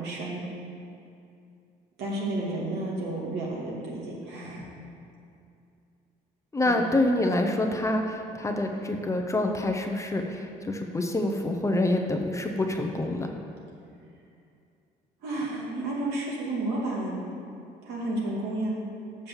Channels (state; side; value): normal; both; correlation 0.67